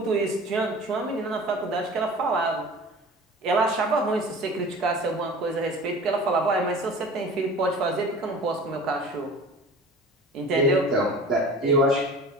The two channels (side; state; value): both; normal; correlation 0.40